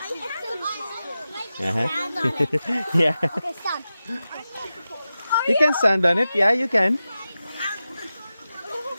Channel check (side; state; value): both; inverted; correlation -0.93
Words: Yeah. Okay, stop. You can stand on it. Yeah, you can.